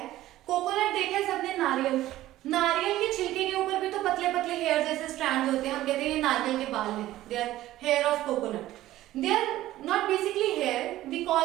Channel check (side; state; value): left; quieter; 15.0 dB